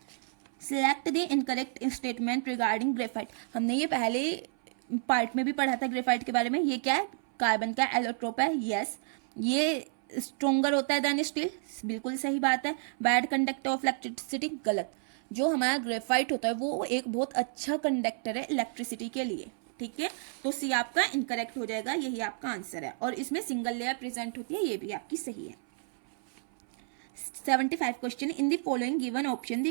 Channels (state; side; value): silent; left; 57 dB below the other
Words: select the incorrect statement regarding graphite. हमने ये पहले पार्ट में भी पढ़ा था ग्रेफाइट के बारे में। ये क्या है, कार्बन का एलोट्रोप है। यस, ये स्ट्रोंगर होता है देन स्टील, बिल्कुल सही बात है। बैड कंडक्टर ऑफ इलेक्ट्रिसिटी, गलत। जो हमारा ग्रेफाइट होता है वो एक बहुत अच्छा कंडक्टर है इलेक्ट्रिसिटी के लिए, ठीक है। तो सी आपका इनकरेक्ट हो जाएगा, यही आपका आंसर है। और इसमें सिंगल लेयर प्रेजेंट होती है, ये भी आपकी सही है। 75 question. In the following given option,